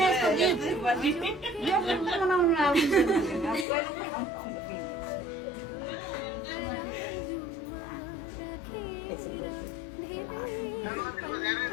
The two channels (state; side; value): drops out; right; at 3.7 s